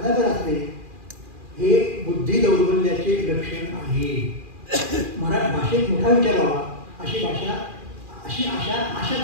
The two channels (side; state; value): left; late; 2.4 ms